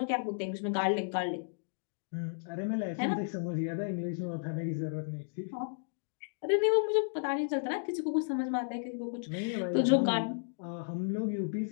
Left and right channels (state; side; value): silent; right; digital silence